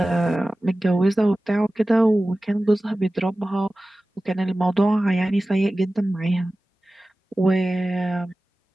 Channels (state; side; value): normal; both; correlation 0.96